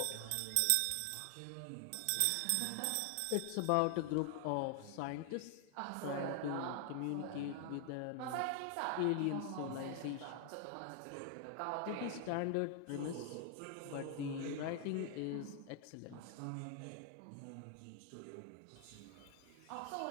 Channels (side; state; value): both; different; correlation 0.00